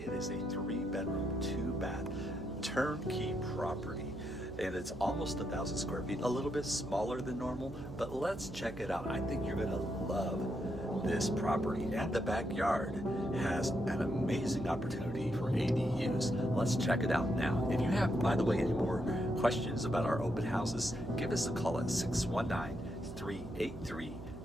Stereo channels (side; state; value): right; noise; hum, 13 dB below the sound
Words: It is a 3-bedroom, 2-bath, turnkey property. And it's almost 1,000 square feet, a little bit smaller than normal, but let's check it out. I think you're gonna love this property, and the backyard has an amazing opportunity for ADUs. Let's check it out now. If you have, by the way, any more questions about our open houses, give us a call at 619-383-2959.